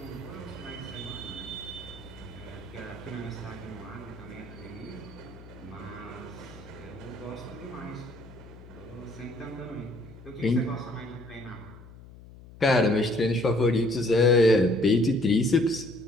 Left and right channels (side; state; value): left; noise; hum, 18 dB below the sound